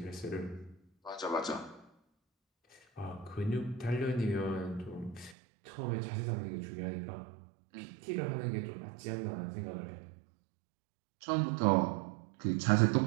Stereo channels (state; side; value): drops out; left; at 5.4 s